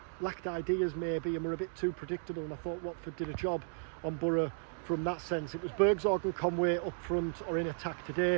lacked ideas maybe and were a bit too predictable, and I thought Watford did a job on Boro from that sense. It was Bergsorg and Conway up front or in attack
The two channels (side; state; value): left; silent; 55 dB below the other